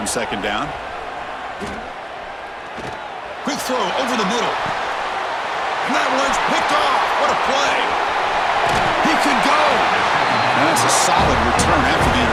second down. Quick throw over the middle. And that one's picked off. What a play. He can go. And that's a solid return after the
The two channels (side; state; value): both; identical; correlation 1.00